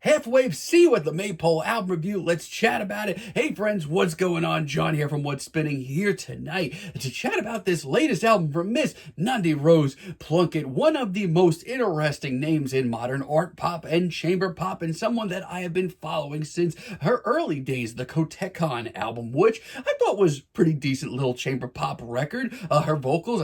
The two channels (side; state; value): both; identical; correlation 1.00